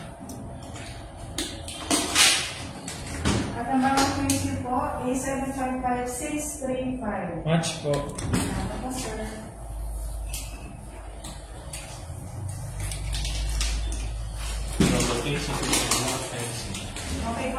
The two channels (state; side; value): identical; both; correlation 1.00